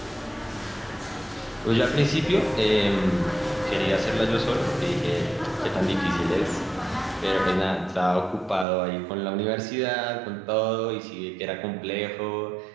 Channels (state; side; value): drops out; left; at 8.7 s